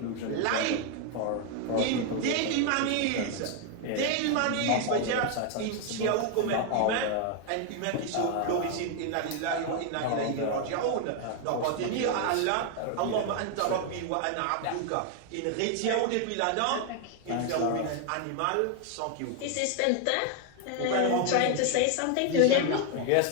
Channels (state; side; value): different; both; correlation 0.00